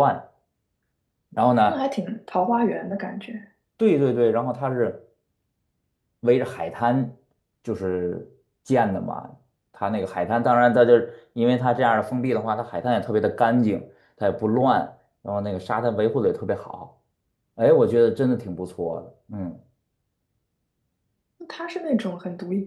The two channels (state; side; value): identical; both; correlation 1.00